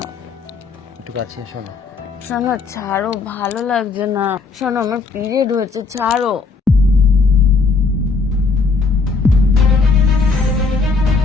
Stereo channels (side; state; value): right; quieter; 4.3 dB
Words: একটু কাছে এসো না। শোনো, ছাড়ো, ভালো লাগছে না। শোনো আমার পিরিয়ড হয়েছে, ছাড়ো।